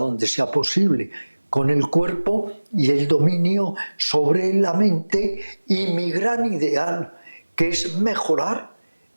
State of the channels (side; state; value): both; inverted; correlation -1.00